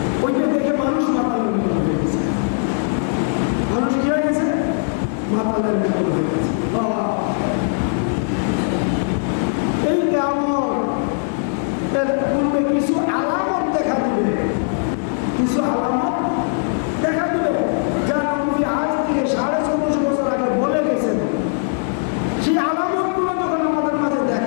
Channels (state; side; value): silent; right; 66 dB below the other